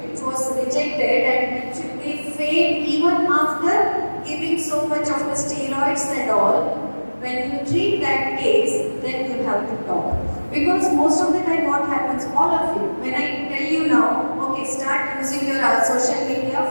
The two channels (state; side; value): inverted; both; correlation -1.00